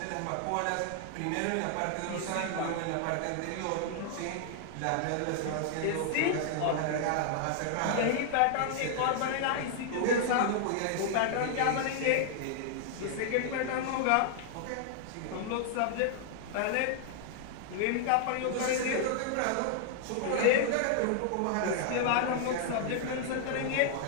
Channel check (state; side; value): different; both; correlation 0.00